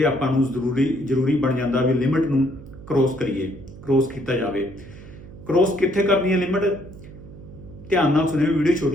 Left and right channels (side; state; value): right; noise; hum, 17 dB below the sound